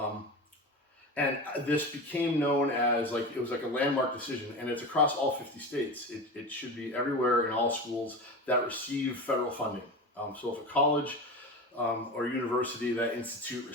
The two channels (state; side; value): normal; both; correlation 0.26